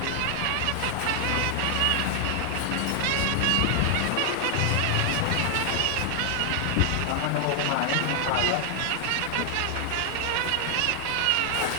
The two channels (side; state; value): both; different; correlation 0.00